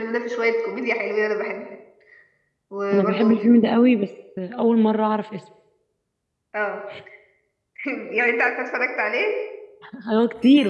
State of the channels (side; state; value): both; identical; correlation 1.00